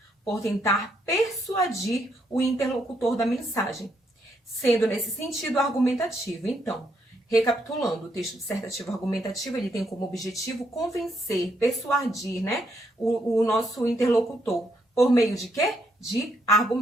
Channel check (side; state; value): both; normal; correlation 0.75